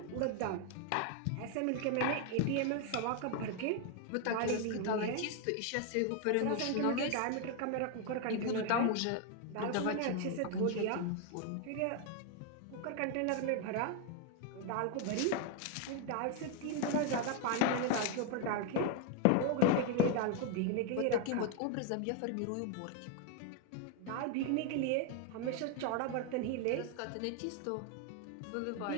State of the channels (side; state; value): both; different; correlation 0.01